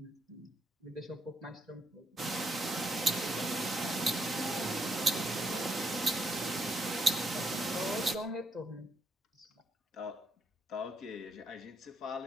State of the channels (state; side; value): normal; both; correlation 0.76